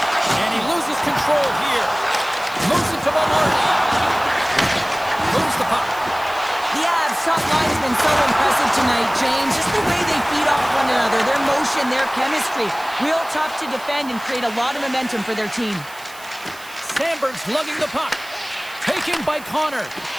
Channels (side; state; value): right; noise; hiss, 19 dB below the sound